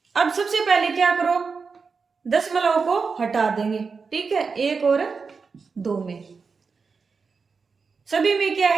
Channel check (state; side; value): quieter; left; 5.0 dB